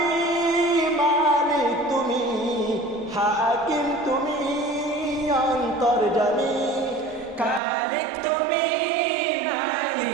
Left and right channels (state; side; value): drops out; left; at 7.6 s